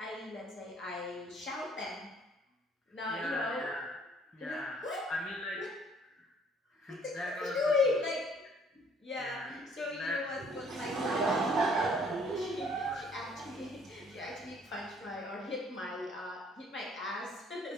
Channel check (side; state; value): both; normal; correlation 0.60